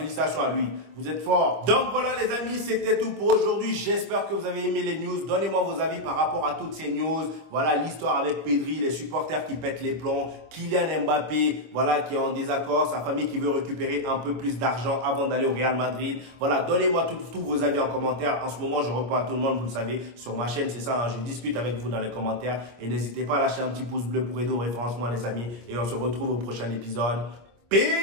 à lui. Vous êtes fort. Donc voilà les amis, c'était tout pour aujourd'hui. J'espère que vous avez aimé les news. Donnez-moi vos avis par rapport à toutes ces news. Voilà l'histoire avec Pedri, les supporters qui pètent les plombs, Kylian Mbappé, voilà, qui est en désaccord, sa famille qui veut récupérer un peu plus d'argent avant d'aller au Real Madrid. Voilà, donnez-moi tous vos avis en commentaire. En ce moment, je réponds à tout le monde, vous le savez, sur ma chaîne, c'est ça, hein, je discute avec vous dans les commentaires. Et n'hésitez pas à lâcher un petit pouce bleu pour aider au référencement les amis. Et on se retrouve au prochain épisode.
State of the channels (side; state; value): left; late; 25 ms